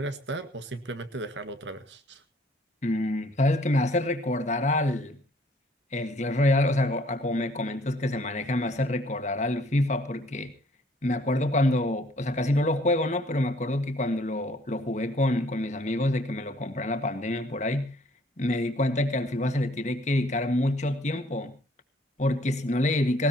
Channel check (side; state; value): both; normal; correlation 0.60